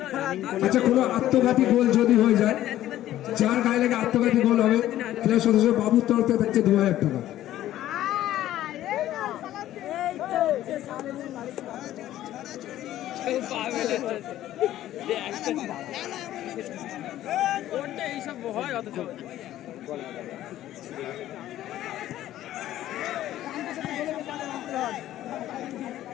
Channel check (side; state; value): right; quieter; 13.4 dB